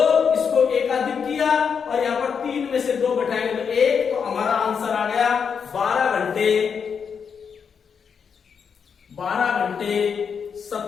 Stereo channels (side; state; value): right; quieter; 6.6 dB